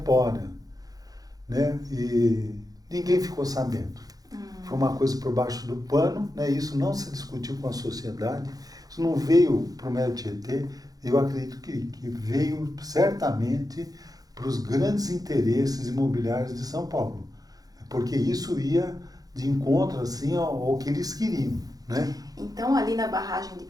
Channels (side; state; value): left; late; 0.18 ms